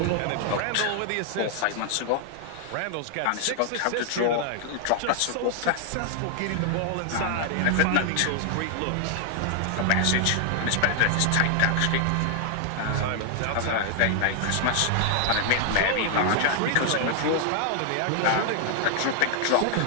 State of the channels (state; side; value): different; both; correlation 0.00